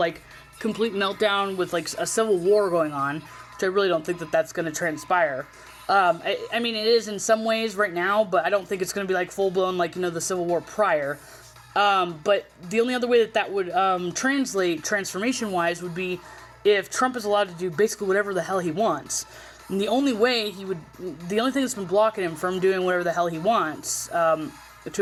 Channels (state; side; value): identical; both; correlation 1.00